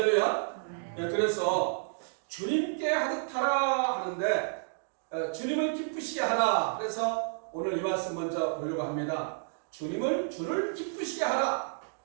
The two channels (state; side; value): silent; left; digital silence